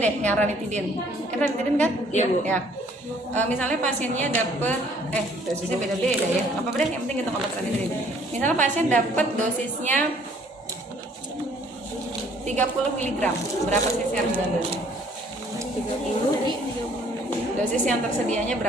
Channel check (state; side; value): normal; both; correlation 0.59